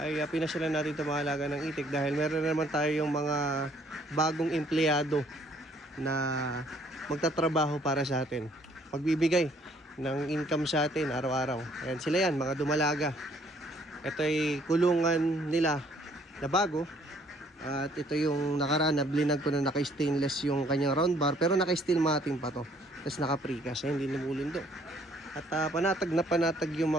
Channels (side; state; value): both; normal; correlation 0.62